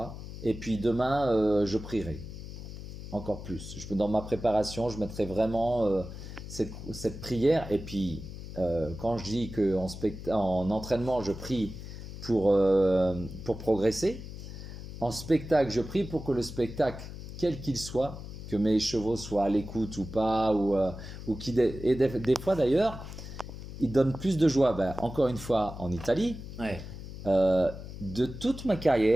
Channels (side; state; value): left; noise; hum, 11 dB below the sound